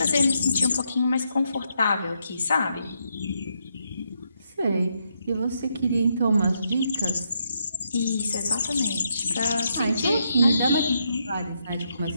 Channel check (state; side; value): inverted; both; correlation -0.78